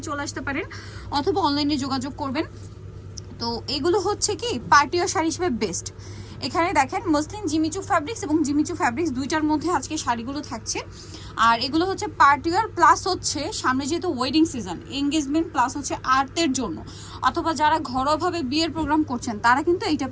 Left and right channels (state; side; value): identical; both; correlation 1.00